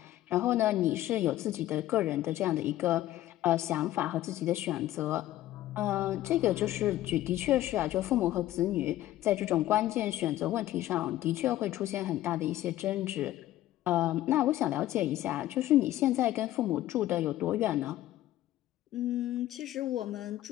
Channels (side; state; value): right; quieter; 14.4 dB